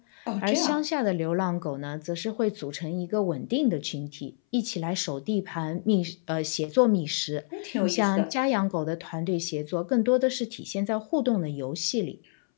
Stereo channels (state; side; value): silent; right; 59 dB below the other